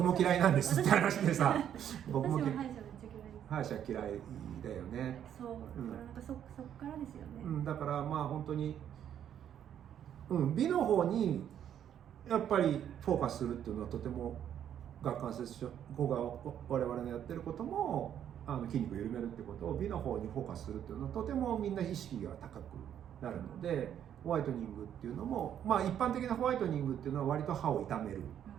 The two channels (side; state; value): left; quieter; 9.8 dB